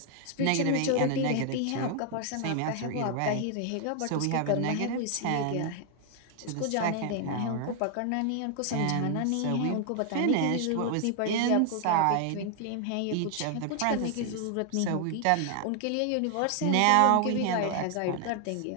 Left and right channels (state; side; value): different; both; correlation 0.00